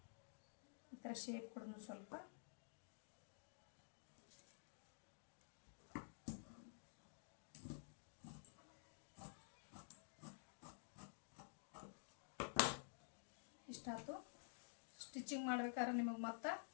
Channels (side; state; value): right; silent; digital silence